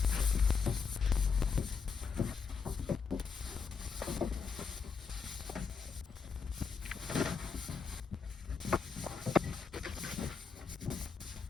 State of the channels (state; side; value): quieter; right; 5.6 dB